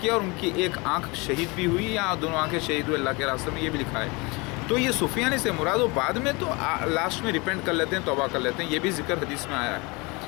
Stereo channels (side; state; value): right; quieter; 26.8 dB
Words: और उनकी एक आंख शहीद भी हुई या दोनों आंखें शहीद हुई अल्लाह के रास्ते में, ये भी लिखा है। तो ये सुफियानी से मुराद वो बाद में तो लास्ट में रिपेंट कर लेते हैं, तौबा कर लेते हैं, ये भी जिक्र हदीस में आया